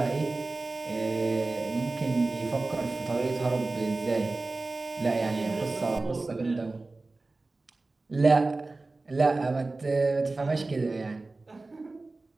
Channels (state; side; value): quieter; left; 3.3 dB